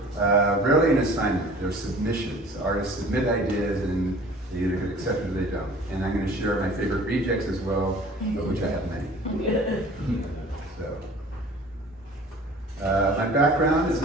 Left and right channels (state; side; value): normal; both; correlation 0.46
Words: rarely an assignment. They're submissions. Artists submit ideas, and they either get accepted or they don't. And I'm going to share my favorite rejects as well, of which I have many. So, my background is,